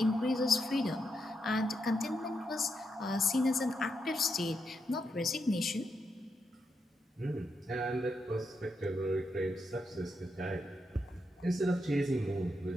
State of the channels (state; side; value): normal; both; correlation 0.82